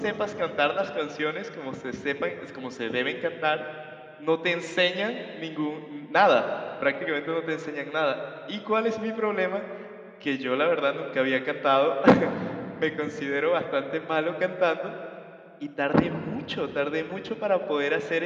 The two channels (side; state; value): both; identical; correlation 1.00